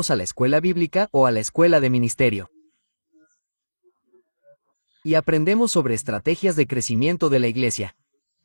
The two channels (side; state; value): both; inverted; correlation -1.00